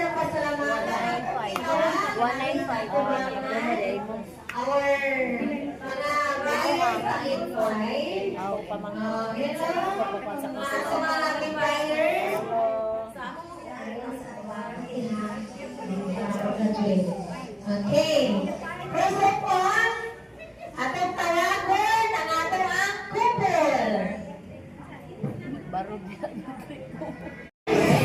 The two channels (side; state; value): both; identical; correlation 1.00